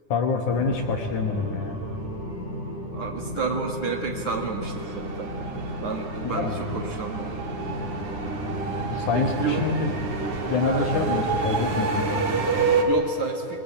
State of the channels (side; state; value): right; late; 9.8 ms